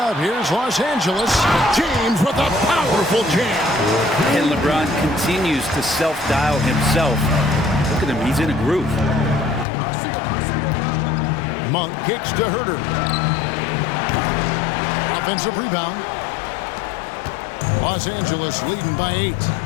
here's Los Angeles. James with a powerful jam. And LeBron continues to self-dial himself. Look at him, he's in a groove. Monk kicks to Huerter. Offensive rebound. Los Angeles leading by 8.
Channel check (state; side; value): drops out; right; at 9.7 s